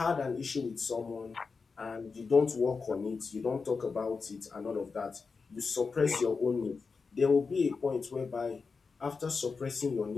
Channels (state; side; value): quieter; right; 4.8 dB